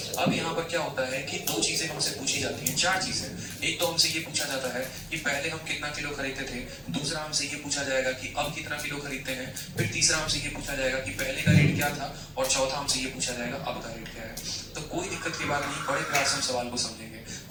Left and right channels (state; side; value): identical; both; correlation 1.00